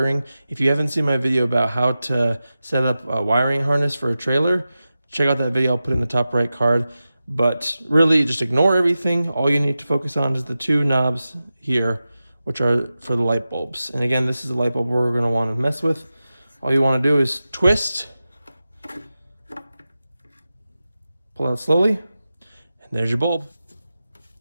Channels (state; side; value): inverted; both; correlation -0.93